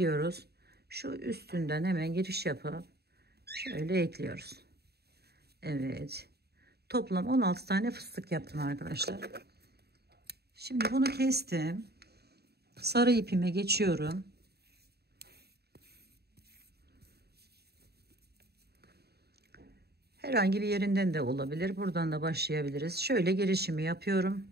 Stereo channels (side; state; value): left; late; 0.47 ms